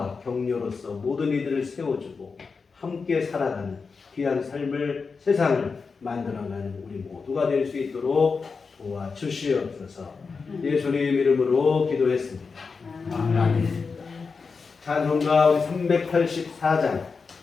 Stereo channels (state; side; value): quieter; right; 4.9 dB